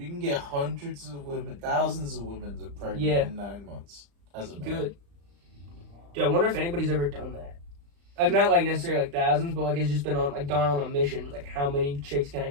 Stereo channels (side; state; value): left; late; 35 ms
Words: can get hundreds of women, thousands of women pregnant in 9 months as a man. Good. Dude, I wonder if anybody's ever done that. Like, not, like, necessarily, like, thousands, but, like, it's just been on, like, gone on a mission. Like, how many chicks can I